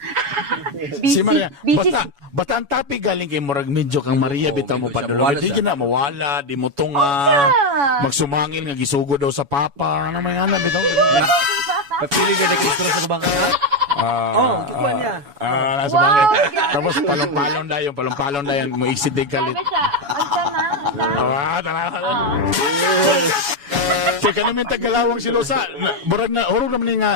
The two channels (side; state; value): left; late; 7.1 ms